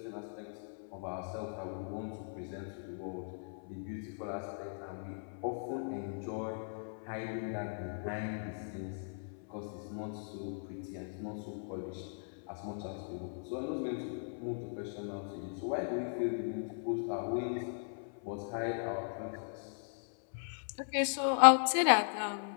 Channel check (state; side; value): silent; right; 53 dB below the other